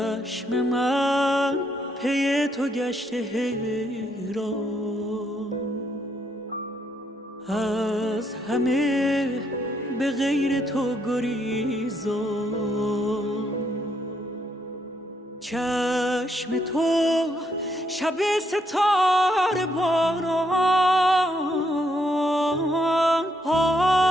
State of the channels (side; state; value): both; normal; correlation 0.74